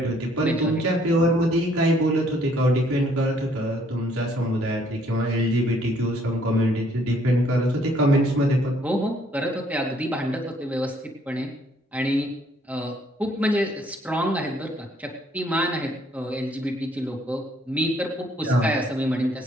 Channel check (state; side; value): normal; both; correlation 0.65